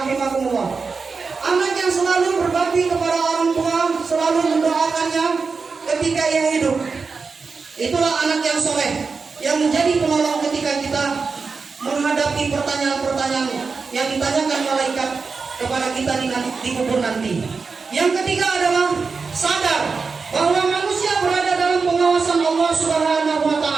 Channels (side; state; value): left; quieter; 4.8 dB